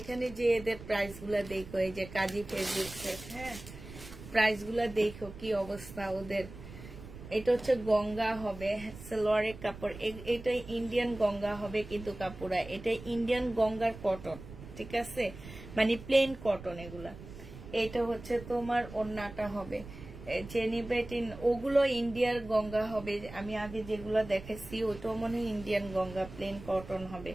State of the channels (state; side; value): noise; right; rumble, 14 dB below the sound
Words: যে এদের প্রাইস গুলা দেখো, এই যে কাজি ফেব্রিক্স এর। হ্যাঁ, প্রাইস গুলা দেখো কি অবস্থা ওদের। এটা হচ্ছে গঙ্গা হবে সালোয়ারের কাপড়, এটা ইন্ডিয়ান গঙ্গা হবে কিন্তু কাপড়া, এটা ইন্ডিয়ান গঙ্গার কটন, ঠিক আছে, মানে প্লেন কটন এগুলা। এটা হচ্ছে তোমার ওড়নাটা হবে জেনিবেটিন, ওগুলো ইন্ডিয়ার গঙ্গা হবে। আমি আগে যেগুলো দেখেছি ওটাও মনে হয় ইন্ডিয়ান গঙ্গা, প্লেন কটন হবে।